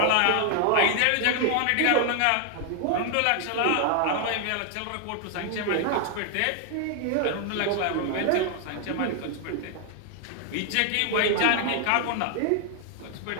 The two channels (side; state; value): both; different; correlation 0.00